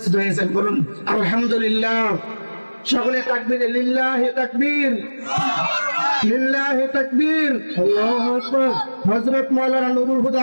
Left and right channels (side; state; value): both; inverted; correlation -1.00